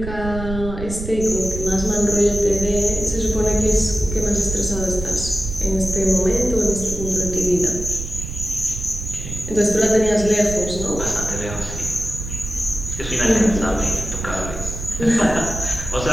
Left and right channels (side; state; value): right; noise; rumble, 7 dB below the sound